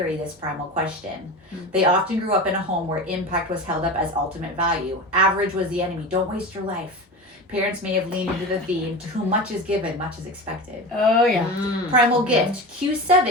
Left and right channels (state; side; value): normal; both; correlation 0.28